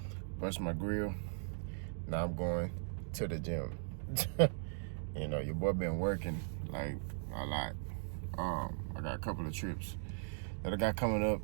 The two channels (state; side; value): silent; left; digital silence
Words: brushed my grill. Now I'm going to the gym. You know, your boy been working, like, a lot. I got a couple of trips that I got coming